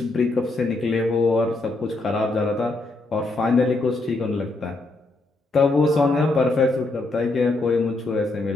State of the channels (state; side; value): quieter; right; 3.1 dB